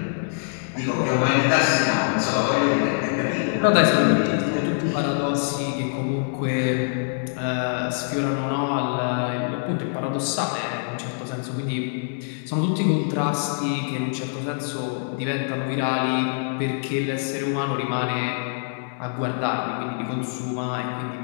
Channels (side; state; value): right; silent; digital silence